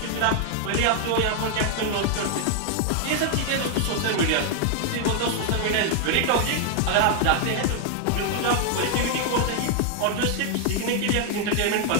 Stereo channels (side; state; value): both; different; correlation 0.00